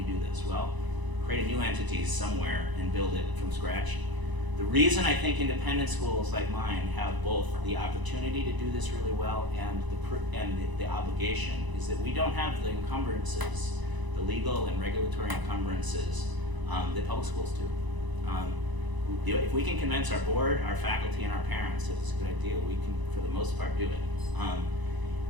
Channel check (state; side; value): late; left; 1.0 ms